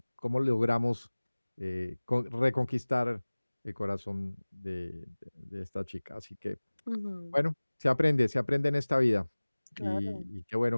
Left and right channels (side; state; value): both; inverted; correlation -1.00